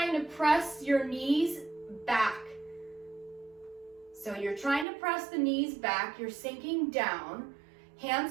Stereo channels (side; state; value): left; drops out; at 4.9 s